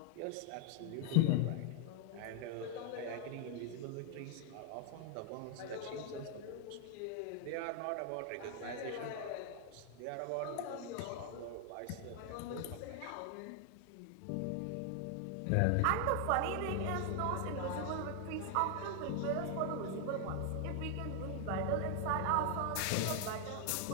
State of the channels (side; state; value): both; different; correlation 0.00